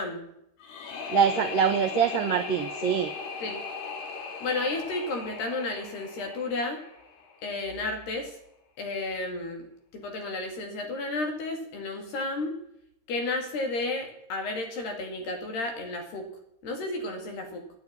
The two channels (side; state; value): right; late; 13 ms